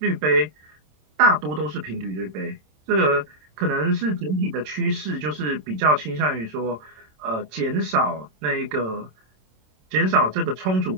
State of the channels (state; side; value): late; left; 27 ms